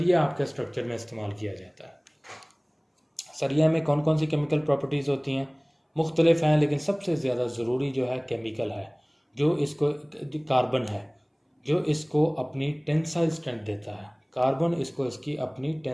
आपके स्ट्रक्चर में इस्तेमाल किया जाता है। सरिया में कौन कौन सी केमिकल प्रॉपर्टीज़ होती हैं, मुख्तलिफ हैं, लेकिन सबसे ज़्यादा ज़रूरी जो है केमिकल है, जो इसको कार्बन है, जो इसको अपनी टेंसाइल स्ट्रेंथ देता है। कार्बन इसको इसकी अपनी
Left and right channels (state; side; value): identical; both; correlation 1.00